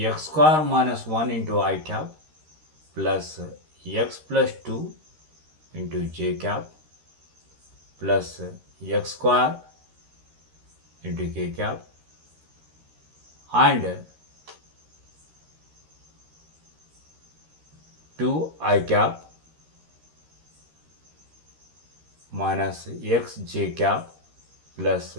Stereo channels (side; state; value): left; late; 13 ms